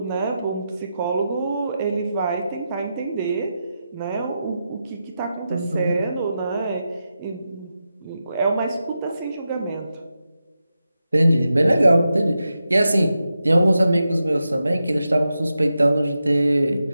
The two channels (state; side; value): inverted; both; correlation -0.89